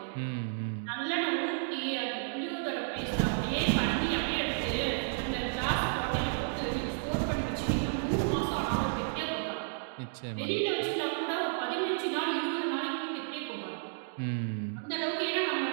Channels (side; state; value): left; silent; digital silence